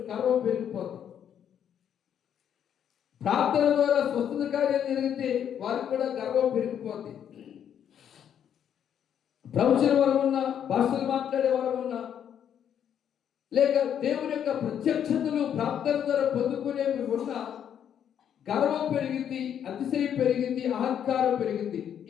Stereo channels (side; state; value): right; quieter; 9.1 dB